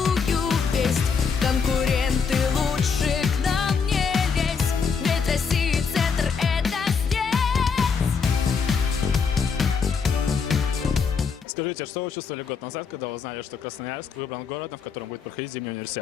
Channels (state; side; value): quieter; right; 5.8 dB